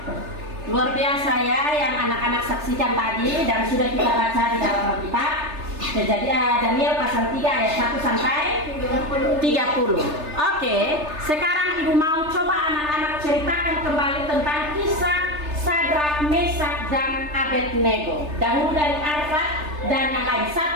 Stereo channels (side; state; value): left; late; 3.3 ms